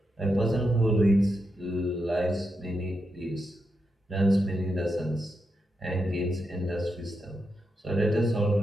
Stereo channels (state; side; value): normal; both; correlation 0.85